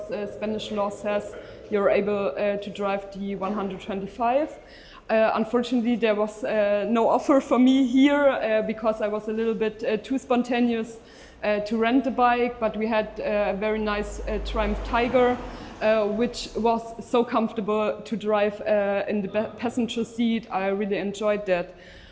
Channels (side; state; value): both; identical; correlation 1.00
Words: Spanish law says you're able to drive the 125. Unfortunately, there was no offer for me here because I was a little bit too spontaneous to rent the bike, but we had a very nice Triumph Tiger, which was so comfortable to drive in the passenger seat. I really enjoyed that.